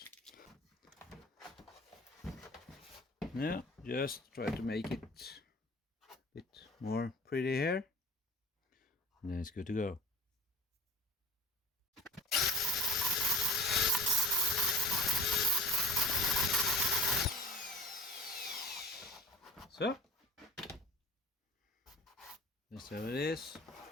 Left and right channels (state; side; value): normal; both; correlation 0.41